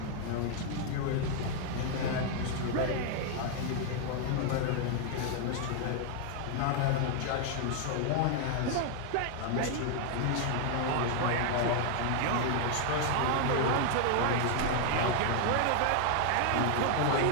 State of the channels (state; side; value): different; both; correlation 0.00